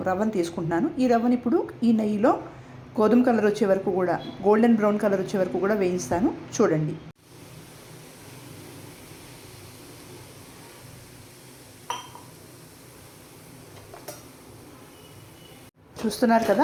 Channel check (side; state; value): both; identical; correlation 1.00